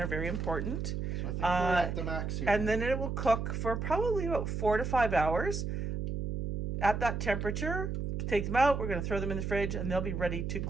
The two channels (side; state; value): right; noise; hum, 3 dB below the sound